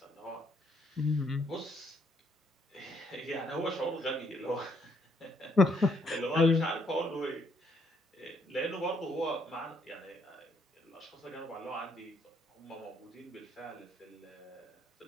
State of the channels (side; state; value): both; normal; correlation 0.71